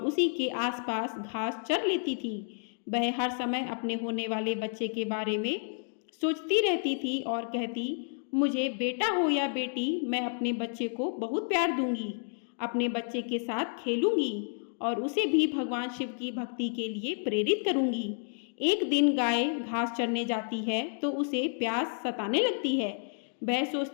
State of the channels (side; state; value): right; silent; 57 dB below the other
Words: उसी के आसपास घास चर लेती थी। वह हर समय अपने होने वाले बच्चे के बारे में सोचती रहती थी और कहती, मुझे बेटा हो या बेटी, मैं अपने बच्चे को बहुत प्यार दूंगी, अपने बच्चे के साथ खेलूंगी और उसे भी भगवान शिव की भक्ति के लिए प्रेरित करूंगी। एक दिन गाय घास चरने जाती है तो उसे प्यास सताने लगती है। वह